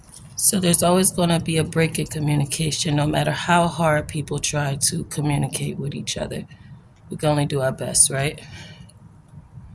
So there's always going to be a break in communication, no matter how hard people try to communicate with each other. We can only do our best, right?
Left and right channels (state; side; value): identical; both; correlation 1.00